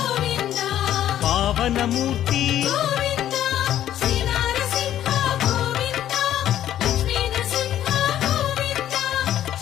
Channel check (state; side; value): quieter; right; 11.7 dB